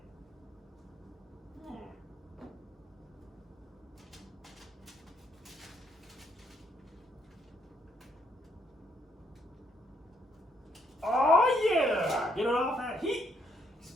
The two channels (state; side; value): normal; both; correlation 0.72